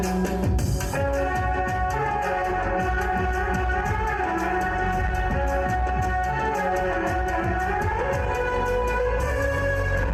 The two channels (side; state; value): both; identical; correlation 1.00